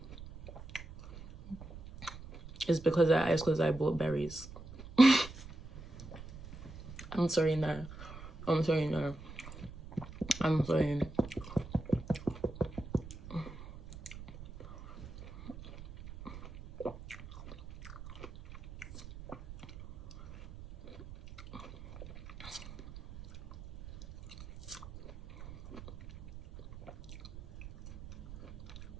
it's because I bought berries. I'm sorry, no. I'm sorry, no. I'm sorry.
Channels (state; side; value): noise; right; rumble, 14 dB below the sound